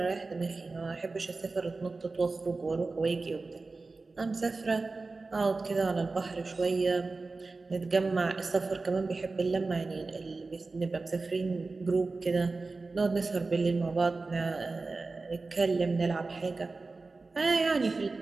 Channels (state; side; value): quieter; left; 3.7 dB